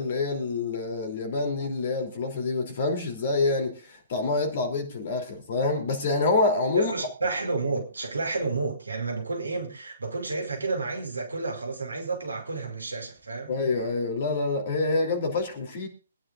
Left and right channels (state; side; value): inverted; both; correlation -0.52